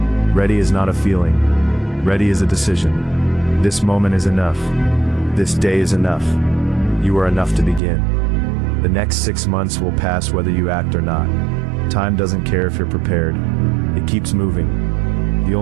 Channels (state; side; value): drops out; left; at 7.8 s